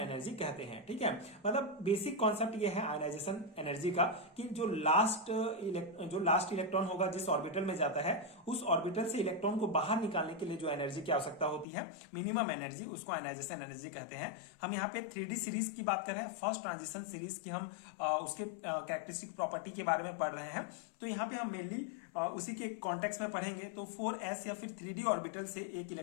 कहते हैं, ठीक है। मतलब बेसिक कॉन्सेप्ट ये है आयनाइजेशन एनर्जी का कि जो लास्ट इलेक्ट्रॉन होगा जिस ऑर्बिटल में जाता है, उस ऑर्बिटल से इलेक्ट्रॉन को बाहर निकालने के लिए जो एनर्जी की आवश्यकता होती है, मिनिमम एनर्जी, उसको आयनाइजेशन एनर्जी कहते हैं। हम यहाँ पे 3D सीरीज की बात कर रहे हैं, फर्स्ट ट्रांजिशन सीरीज की हम उसके कैरेक्टरिस्टिक प्रॉपर्टी के बारे में पढ़ रहे हैं। तो यहाँ पे हम मेनली उसी के कॉन्टेक्स्ट में पढ़ेंगे। तो 4s या फिर 3D ऑर्बिटल से एक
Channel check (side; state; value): right; drops out; at 11.7 s